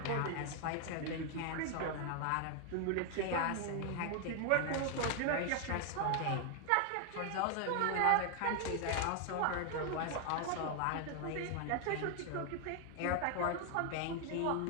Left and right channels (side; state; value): both; different; correlation 0.00